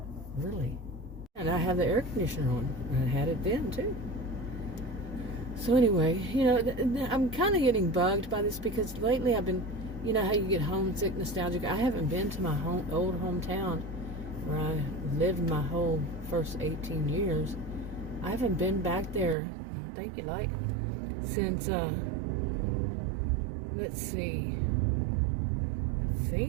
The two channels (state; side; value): drops out; left; at 19.4 s